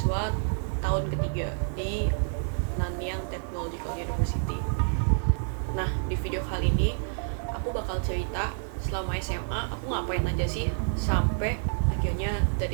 tahun ketiga di Nanyang Technological University. Nah, di video kali ini aku bakal cerita selama SMA aku ngapain aja sih sampai akhirnya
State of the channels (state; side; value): silent; left; digital silence